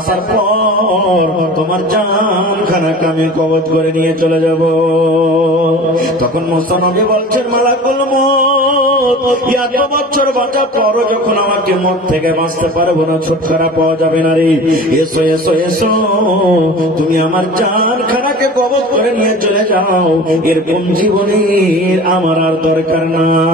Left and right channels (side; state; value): both; normal; correlation 0.38